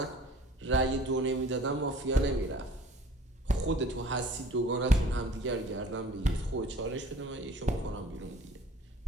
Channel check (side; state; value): both; normal; correlation 0.49